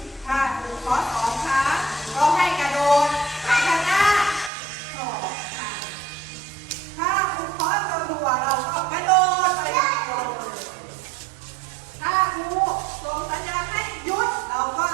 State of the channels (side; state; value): left; drops out; at 4.5 s